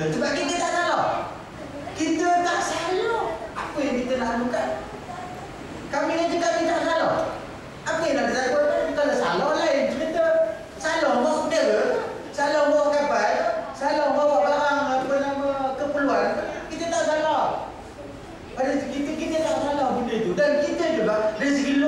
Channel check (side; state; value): both; identical; correlation 1.00